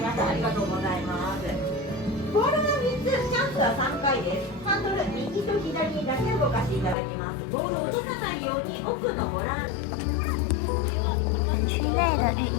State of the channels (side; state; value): right; drops out; at 7.0 s